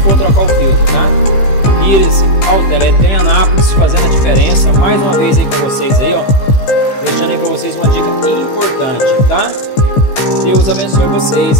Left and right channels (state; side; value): late; right; 15 ms